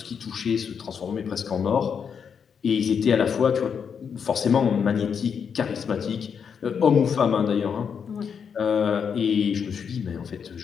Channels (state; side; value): quieter; right; 6.9 dB